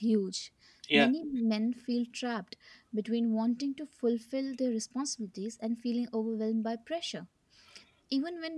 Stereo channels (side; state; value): both; identical; correlation 1.00